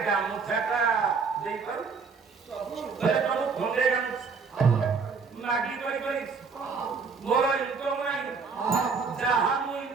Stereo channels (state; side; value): quieter; left; 5.1 dB